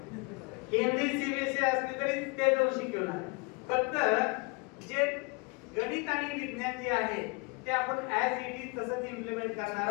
हिंदी सीबीएसई असली तरी ते दोन शिकवणार. फक्त जे गणित आणि विज्ञान जे आहे ते आपण ऍज इट इज तसंच इम्प्लिमेंट करणार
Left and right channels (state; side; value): quieter; right; 28.1 dB